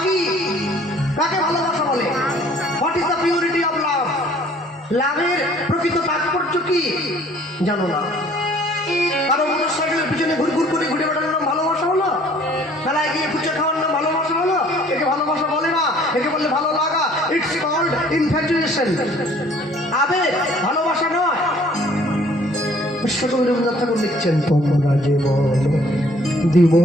কি? কাকে ভালোবাসা বলে? What is the purity of love? লাভের প্রকৃত তাৎপর্য কি জানো না? কারো মোটরসাইকেলের পিছনে ঘুরঘুর করে ঘুরে বেড়ানোর নাম ভালোবাসা হলো? মেলায় গিয়ে ফুচকা খাওয়ার নাম ভালোবাসা হলো? একে ভালোবাসা বলে না, একে বললে ভালো লাগা। It's called infatuation. আবেগ, ভালোবাসা নয়। বিশ্বকবি রবীন্দ্রনাথ ঠাকুর লিখছেন, তোমরা যে বলো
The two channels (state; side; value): normal; both; correlation 0.56